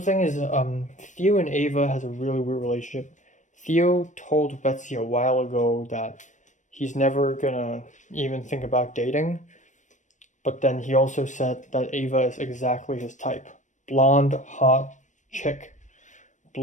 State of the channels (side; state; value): right; late; 0.35 ms